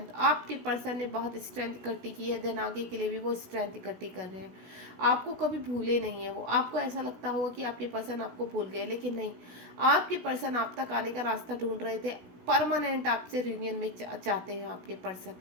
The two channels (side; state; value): left; late; 16 ms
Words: आपके पर्सन ने बहुत स्ट्रेंथ इकट्ठी की है, देन आगे के लिए भी वो स्ट्रेंथ इकट्ठी कर रहे हैं। आपको कभी भूले नहीं है वो। आपको ऐसा लगता होगा कि आपके पर्सन आपको भूल गए, लेकिन नहीं, आपके पर्सन आप तक आने का रास्ता ढूंढ रहे थे। परमानेंट आपसे रियूनियन में चाहते हैं आपके पर्सन।